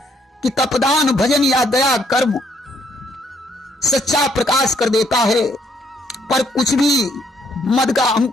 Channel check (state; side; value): normal; both; correlation 0.70